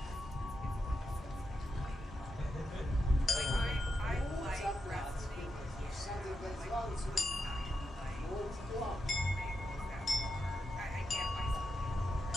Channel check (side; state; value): both; normal; correlation 0.87